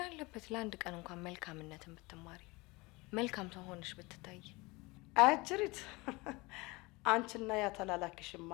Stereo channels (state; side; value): quieter; right; 24.0 dB